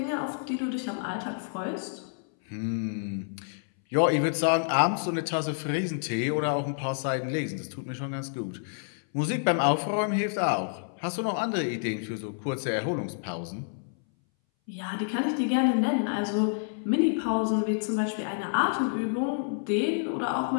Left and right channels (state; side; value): silent; right; 59 dB below the other